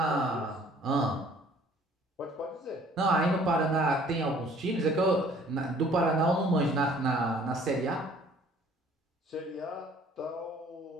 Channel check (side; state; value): both; normal; correlation 0.55